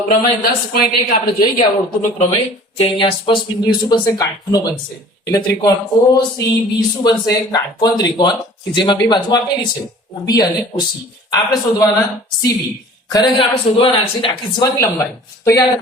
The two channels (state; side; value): normal; both; correlation 0.47